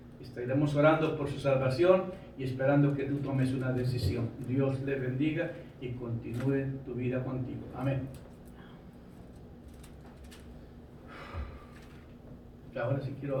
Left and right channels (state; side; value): identical; both; correlation 1.00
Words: Estaremos orando por su salvación y esperando que tú tomes una decisión. Dios le bendiga y continúe tu vida contigo. Amén. Ahora sí